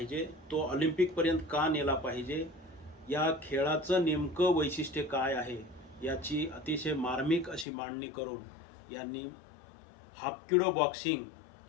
तो ऑलिम्पिकपर्यंत का नेला पाहिजे, या खेळाचं नेमकं वैशिष्ट्य काय आहे याची अतिशय मार्मिक अशी मांडणी करून यांनी हाफकिडो बॉक्सिंग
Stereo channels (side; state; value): right; drops out; at 7.7 s